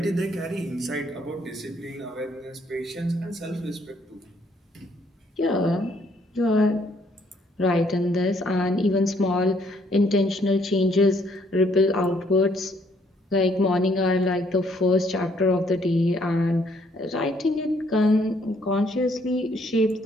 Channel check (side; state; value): both; normal; correlation 0.67